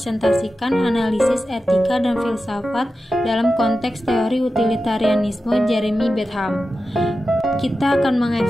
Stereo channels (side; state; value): both; normal; correlation 0.92